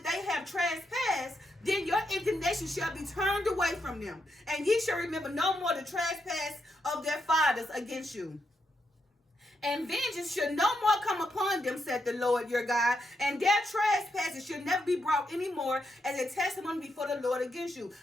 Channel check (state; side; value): normal; both; correlation 0.81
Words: they have trespassed, then your indignation them. And ye shall remember no more the trespass of their fathers against you. And vengeance should no more come upon them, said the Lord your God, and their trespasses should never be brought any more as a testimony before the Lord against you.